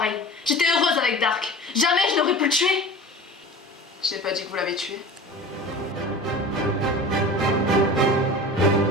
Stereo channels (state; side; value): normal; both; correlation 0.36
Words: J'étais heureuse avec Dark. Jamais je n'aurais pu le tuer. Je n'ai pas dit que vous l'avez tué.